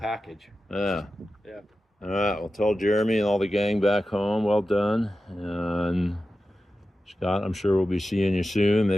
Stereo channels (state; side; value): normal; both; correlation 0.93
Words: Yeah. Yeah. All right. Well, tell Jeremy and all the gang back home, well done. And Scott, I'm sure we'll be seeing you soon.